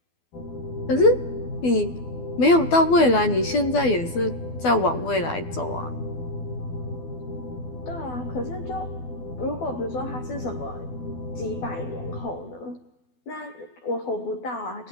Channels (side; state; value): right; late; 12 ms